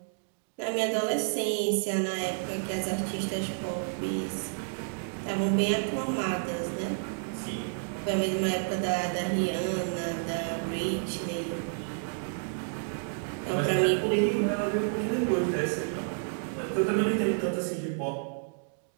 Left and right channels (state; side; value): silent; left; digital silence